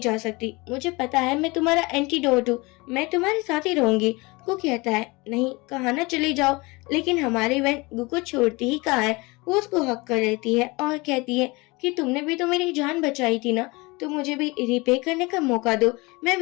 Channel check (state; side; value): quieter; right; 24.8 dB